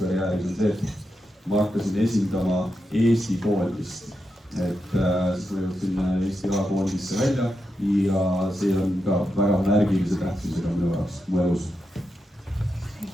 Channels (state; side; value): normal; both; correlation 0.87